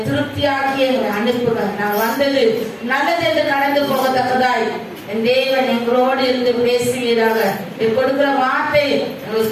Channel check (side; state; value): both; identical; correlation 1.00